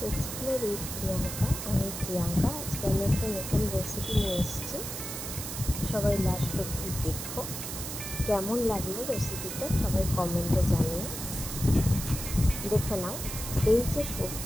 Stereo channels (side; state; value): right; noise; hiss, 6 dB below the sound